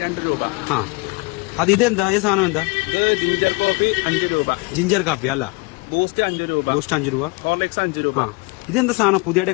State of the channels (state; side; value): quieter; right; 27.0 dB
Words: 2 രൂപ. ആ അത് ഇതെന്താ ഈ സാധനം എന്താ? ഇത് ജിഞ്ചർ കോഫി 5 രൂപ. ജിഞ്ചർ കാപ്പി അല്ല. ബൂസ്റ്റ് 5 രൂപ. ബൂസ്റ്റ് 5 രൂപ. ഹോർലിക്സ് 5 രൂപ. ആ ഇതെന്താ സാധനം പുതിയതായിട്ട്